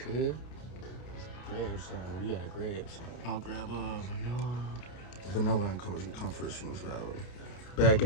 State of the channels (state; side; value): late; right; 30 ms